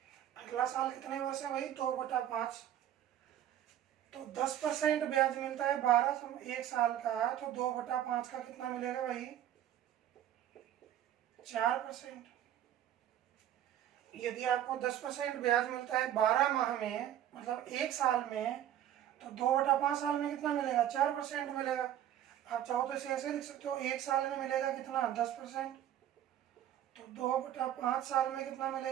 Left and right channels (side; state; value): left; quieter; 11.4 dB